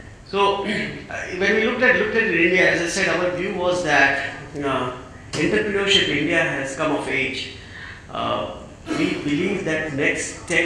So when we looked at India, as I said, our view was that entrepreneurship in India has come of age. We believe that next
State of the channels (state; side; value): identical; both; correlation 1.00